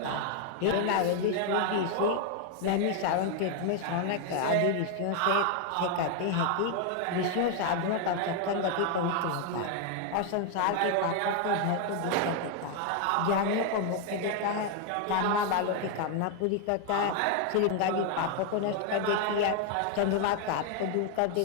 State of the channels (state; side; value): different; both; correlation 0.00